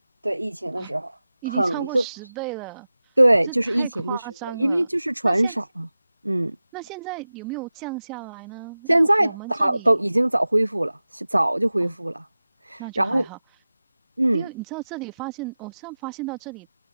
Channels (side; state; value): both; inverted; correlation -0.95